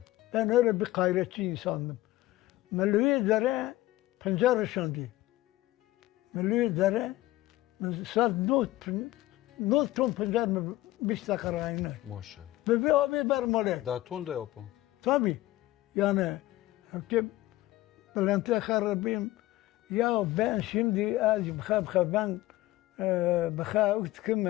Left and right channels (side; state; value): right; quieter; 17.0 dB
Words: Ben öyle bir gayretçi insandım. Melüye dere pencere şandi. Melüye dere saat not ton pencere mi 5 dakika aynı. Maşallah. Bebe abi bermale. Daha ton da yapın. Tabii. Yani ki Bülent'e harabim ya ben şimdi az bıxa ben bıxa